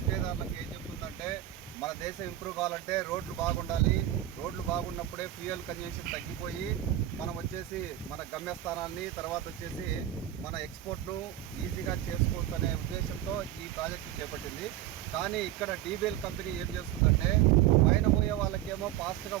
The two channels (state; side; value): quieter; left; 12.6 dB